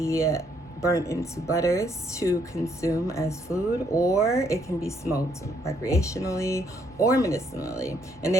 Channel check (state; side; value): normal; both; correlation 0.70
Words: burnt into butters to consume as food, or it can be smoked recreationally or medicinally. And